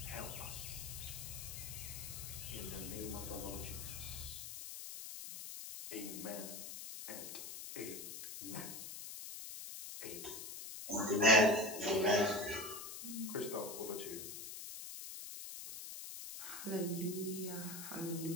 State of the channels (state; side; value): noise; left; hiss, 8 dB below the sound